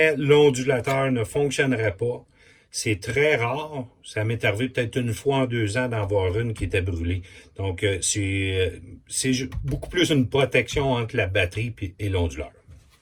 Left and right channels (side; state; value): both; identical; correlation 1.00